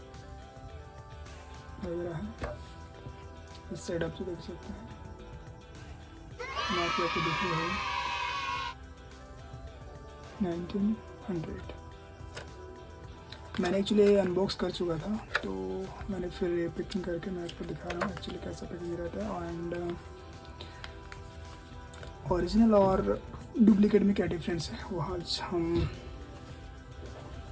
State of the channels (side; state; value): both; identical; correlation 1.00